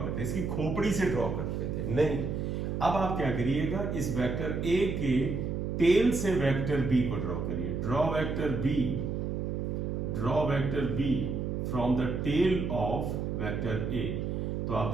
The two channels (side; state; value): right; noise; hum, 2 dB below the sound